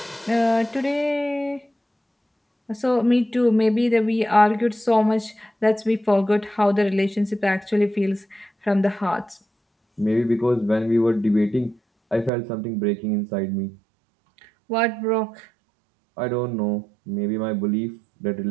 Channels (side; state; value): left; drops out; at 12.3 s